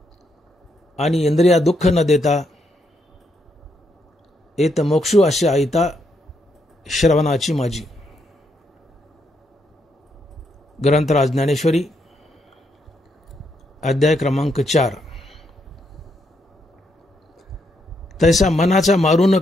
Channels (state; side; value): normal; both; correlation 0.77